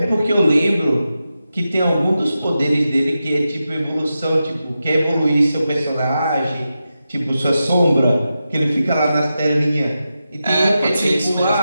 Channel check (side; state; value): both; inverted; correlation -0.90